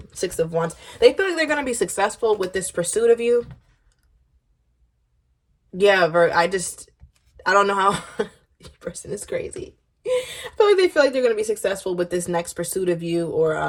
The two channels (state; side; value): identical; both; correlation 1.00